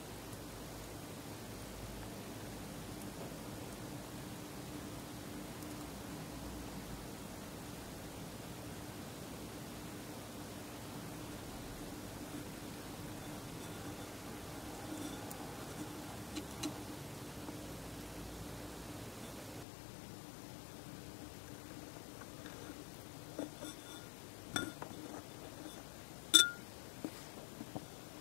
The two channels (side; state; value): right; drops out; at 19.7 s